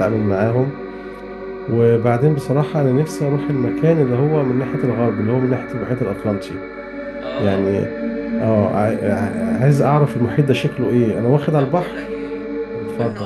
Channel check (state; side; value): identical; both; correlation 1.00